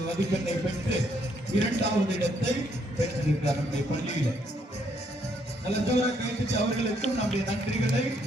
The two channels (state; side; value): normal; both; correlation 0.71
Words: மதிப்பெண்ணை பெற்று 2வது இடத்தை பெற்றிருக்கிறார் நம்முடைய பள்ளியில். நல்ல ஜோரா கைது அவர்களுக்கும் நம்முடைய நன்றிகளை,